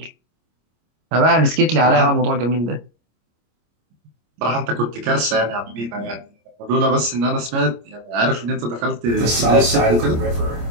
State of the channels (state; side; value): late; left; 26 ms